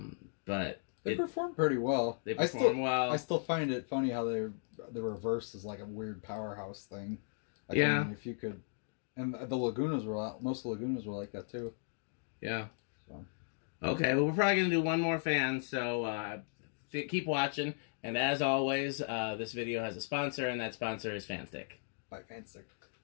But they perform pretty well. They perform well. I still find it funny how the reverse is like a weird powerhouse thing. Like, yeah. I mean, if you could, and the Lagunas most Lagunas were like that too. Yeah. So. Okay. Well, we're probably gonna do one more fan. So keep watching. And as always, this video has a sponsor, and that sponsor is Fanstick. By Fanstick.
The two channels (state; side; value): silent; right; digital silence